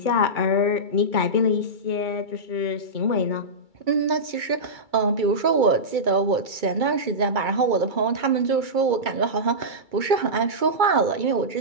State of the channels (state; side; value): late; left; 2.3 ms